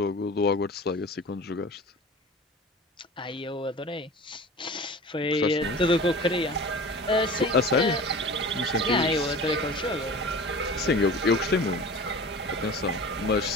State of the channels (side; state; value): both; normal; correlation 0.38